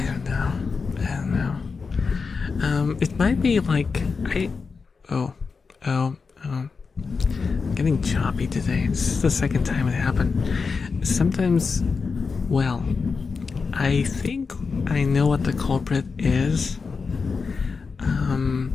don't know. It might be like Oh, I'm getting choppy today. This is the second time it happened. Sometimes, well, I think I know what the culprit is.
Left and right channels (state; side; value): quieter; right; 4.9 dB